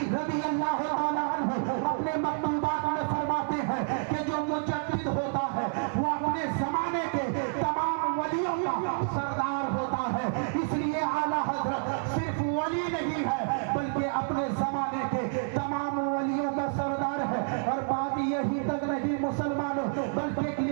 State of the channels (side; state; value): left; silent; 59 dB below the other